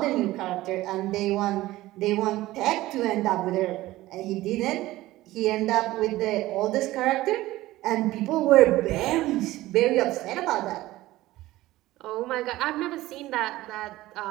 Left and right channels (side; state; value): left; quieter; 17.0 dB